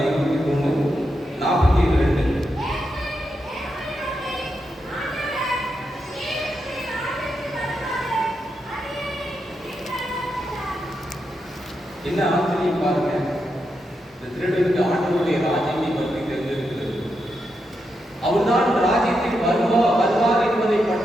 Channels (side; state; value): both; normal; correlation 0.85